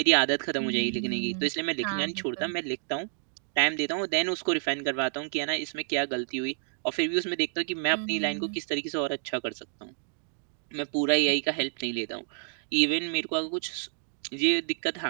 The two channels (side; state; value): left; silent; 58 dB below the other